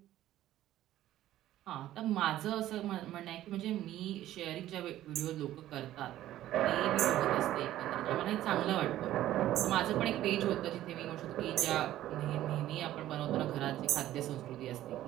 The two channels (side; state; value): left; quieter; 13.6 dB